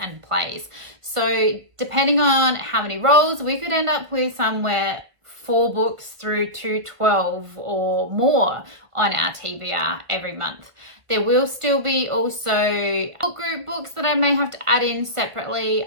plays. So depending on how many rolls, we could end up with somewhere 4 books through to 12 or more on our TBR every month. There will still be also book group books that I may have to add in separately.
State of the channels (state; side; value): late; left; 1.5 ms